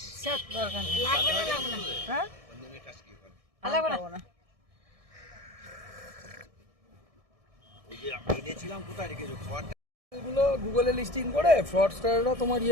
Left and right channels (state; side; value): late; left; 1.6 ms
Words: দরকার নেই। লাগবে না, লাগবে না, হ্যাঁ লাগবে না। ওই যে আমি এনেছিলাম, কোথায় রেখেছো খাবারটা? এগুলো গুগলে লিস্টিং করে ফ্রডস্টাররা তোমার